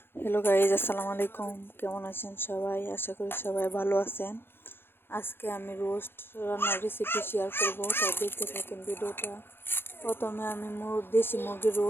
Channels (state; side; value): late; right; 0.11 ms